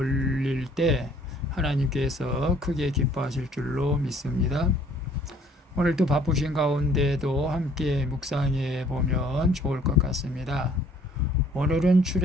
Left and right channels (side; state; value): both; normal; correlation 0.58